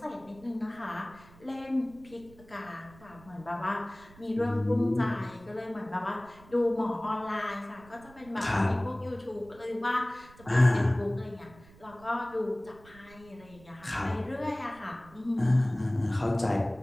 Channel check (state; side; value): noise; right; rumble, 23 dB below the sound